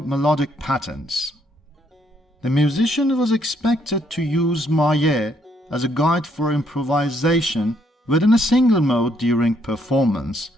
melodic patterns. The musician was expected to use maye as a guide for improvisation within a single mode during performance,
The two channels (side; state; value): both; normal; correlation 0.71